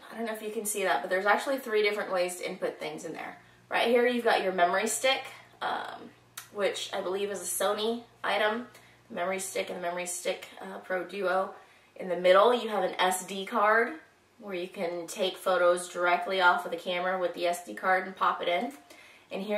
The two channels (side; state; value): both; identical; correlation 1.00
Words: I don't know if you can see that, but there's actually 3 different ways to input things in there. Right here you've got your memory stick, which I believe is a Sony item, the memory stick and the memory stick Pro Duo. In the middle you have an SD card where you can take photos directly off of the camera with the SD card and pop it in. And